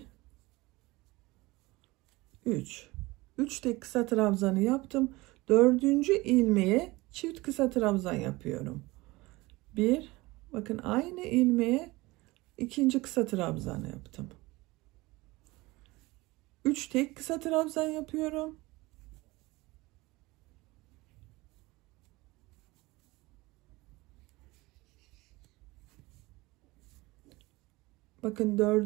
3. 3 tek kısa trabzanı yaptım. 4. ilmeğe çift kısa trabzan yapıyorum. 1, bakın aynı ilmeğe ikinci kısa trabzanı yaptım. 3 tek kısa trabzan yapıyorum. Bakın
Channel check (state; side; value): quieter; left; 21.5 dB